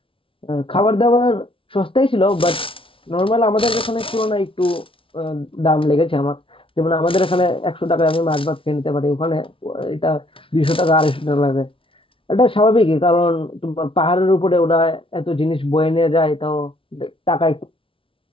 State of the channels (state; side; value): late; right; 0.25 ms